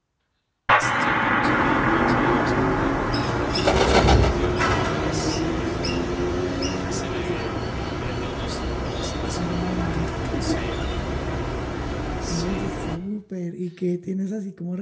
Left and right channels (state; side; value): identical; both; correlation 1.00